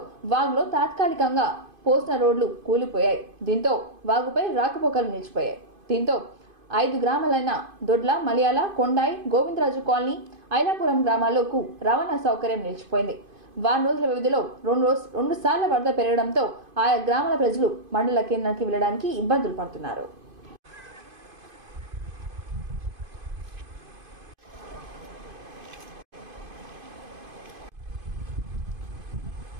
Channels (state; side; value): late; left; 2.5 ms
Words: వాగులో తాత్కాలికంగా పోసిన రోడ్లు కూలిపోయాయి. దీంతో వాగుపై రాకపోకలు నిలిచిపోయాయి. దీంతో 5 గ్రామాలైన దొడ్ల, మలయాళ, కొండాయి, గోవిందరాజు కాలనీ, ఐలాపురం గ్రామాలకు రవాణా సౌకర్యం నిలిచిపోయింది. వారం రోజుల వ్యవధిలో 2 సార్లు వరద పెరగడంతో ఆయా గ్రామాల ప్రజలు మండల కేంద్రానికి వెళ్లడానికి ఇబ్బందులు పడుతున్నారు.